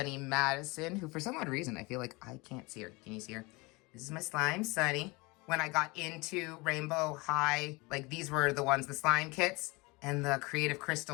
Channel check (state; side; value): quieter; right; 25.4 dB